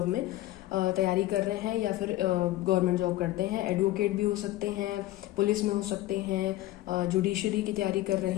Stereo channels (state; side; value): quieter; right; 16.1 dB